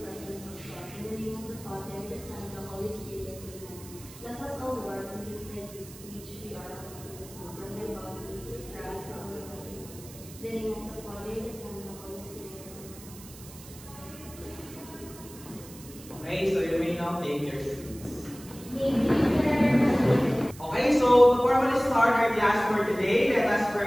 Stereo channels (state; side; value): noise; right; hiss, 18 dB below the sound